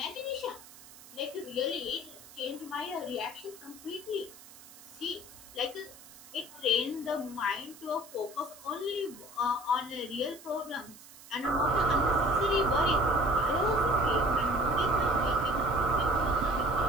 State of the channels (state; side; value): noise; right; hiss, 19 dB below the sound